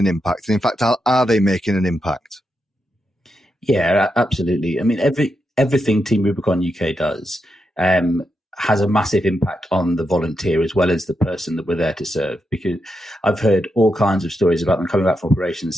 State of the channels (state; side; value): normal; both; correlation 0.85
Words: an impact? And in fact, are they making an impact? Yeah, absolutely. I mean, everything Team Rubicon UK does has a massive impact on the volunteer as well as the person that we're there to serve. Because I've heard all kinds of stories about them coming back from operations